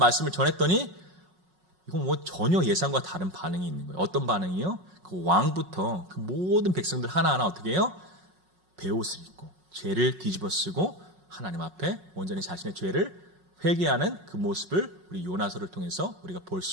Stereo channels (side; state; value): left; late; 5.5 ms